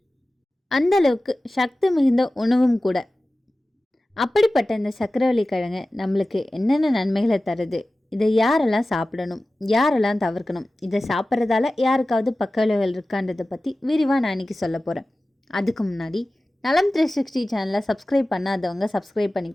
அந்த அளவுக்கு சக்தி மிகுந்த உணவும் கூட. அப்படிப்பட்ட இந்த சக்கரவள்ளி கிழங்கு நம்மளுக்கு என்னென்ன நன்மைகளை தருது, இதை யாரெல்லாம் சாப்பிடணும், யாரெல்லாம் தவிர்க்கணும், இதை சாப்பிட்றதால யாருக்காவது பக்க விளைவுகள் இருக்கான்றதை பற்றி விரிவாக நான் இன்றைக்கி சொல்ல போகிறேன். அதுக்கு முன்னாடி நலம் 360 சேனலை சப்ஸ்கிரைப் பண்ணாதவங்க சப்ஸ்கிரைப்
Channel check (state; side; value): normal; both; correlation 0.96